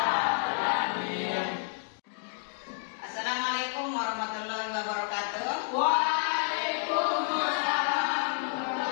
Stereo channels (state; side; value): silent; right; 58 dB below the other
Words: Assalamualaikum warahmatullahi wabarakatuh. Waalaikumsalam.